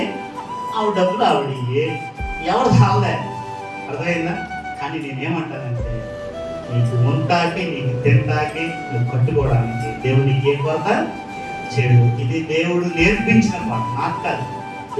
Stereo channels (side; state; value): both; identical; correlation 1.00